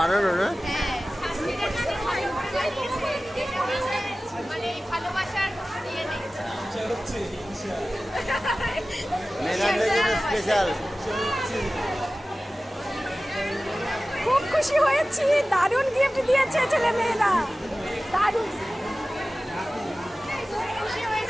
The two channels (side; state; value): both; normal; correlation 0.97